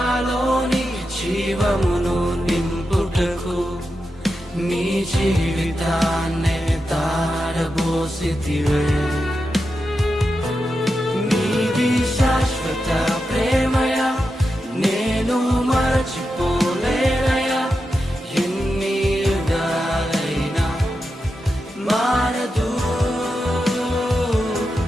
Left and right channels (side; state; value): both; normal; correlation 0.89